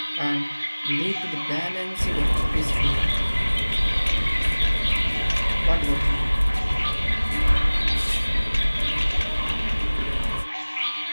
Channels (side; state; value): both; inverted; correlation -1.00